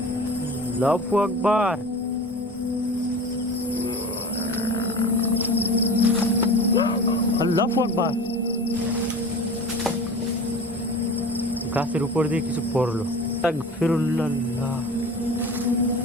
আল্লাহু আকবার। আল্লাহু আকবার। গাছের উপর দিয়ে কিছু পড়লো। আস্তাগফিরুল্লাহ।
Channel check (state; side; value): normal; both; correlation 0.36